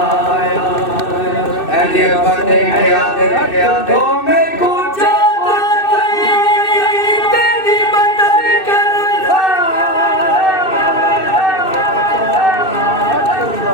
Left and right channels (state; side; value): late; right; 2.6 ms